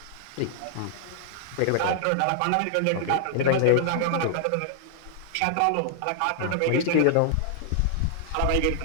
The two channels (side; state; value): both; different; correlation 0.00